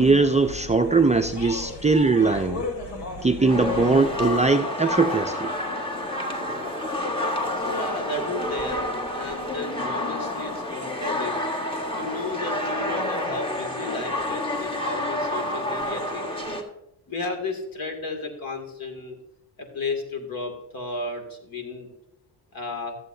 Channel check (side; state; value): both; normal; correlation 0.41